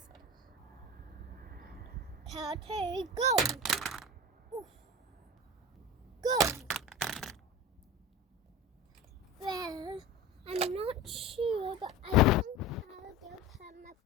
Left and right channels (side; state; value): both; normal; correlation 0.31